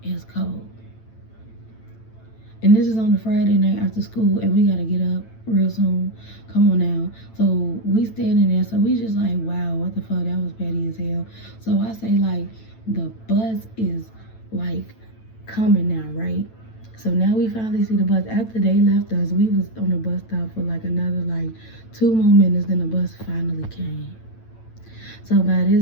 cold. And this is on a Friday night after school, and we gotta get up real soon. Come on now. So we standing there, so we just like, wow, what the fuck? That was petty as hell. So I say like, the bus is like coming now, right? So now we finally see the bus. After they left us, we was on the bus stop for like another like 2 more minutes, then the bus finally came. So by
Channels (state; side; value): late; right; 9.0 ms